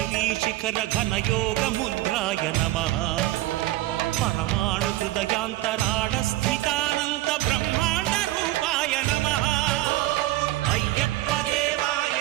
శిఖర ఘన యోగ ముద్రాయ నమః పరమాణు హృదయాంతరాళ స్థితానంత బ్రహ్మాండ రూపాయ నమః అయ్యప్ప దేవాయ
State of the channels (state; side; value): quieter; left; 16.3 dB